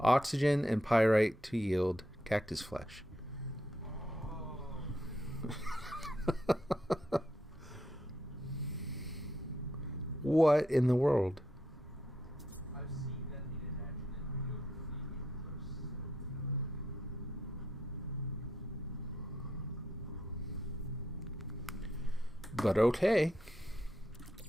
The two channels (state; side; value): normal; both; correlation 0.79